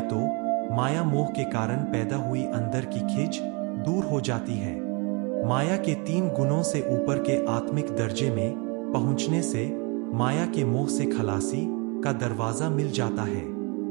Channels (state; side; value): quieter; left; 31.3 dB